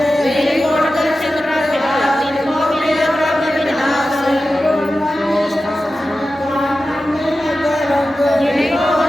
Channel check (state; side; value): normal; both; correlation 0.93